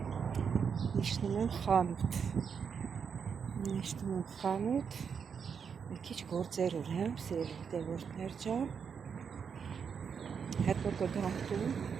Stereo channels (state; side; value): quieter; left; 6.6 dB